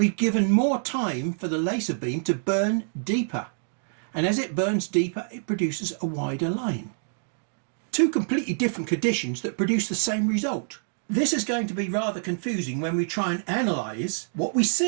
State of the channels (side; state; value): left; silent; digital silence